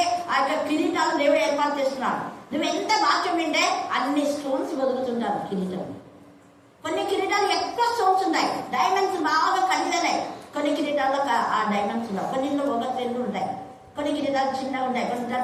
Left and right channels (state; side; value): identical; both; correlation 1.00